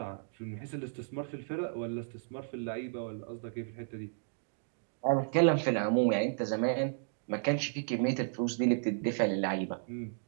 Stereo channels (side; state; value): left; silent; digital silence